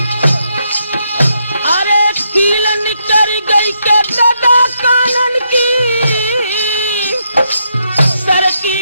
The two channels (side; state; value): both; inverted; correlation -0.78